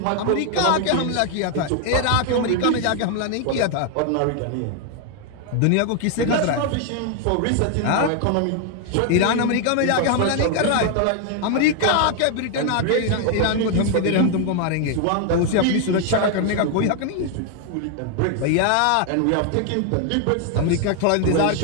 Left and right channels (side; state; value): both; different; correlation 0.00